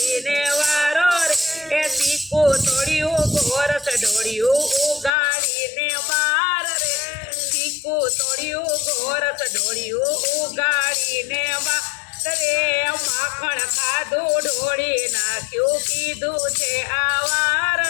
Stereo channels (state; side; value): drops out; right; at 5.1 s